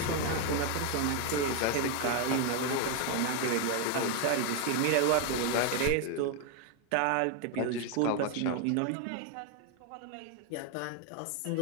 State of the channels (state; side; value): different; both; correlation 0.01